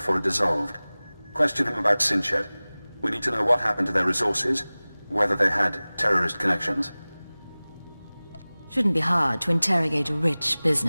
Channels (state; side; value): inverted; both; correlation -0.99